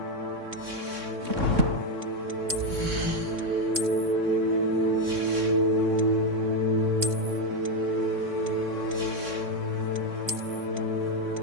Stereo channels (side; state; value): left; late; 3.6 ms